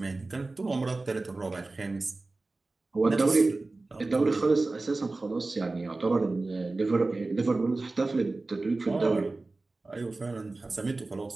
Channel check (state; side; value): quieter; left; 3.3 dB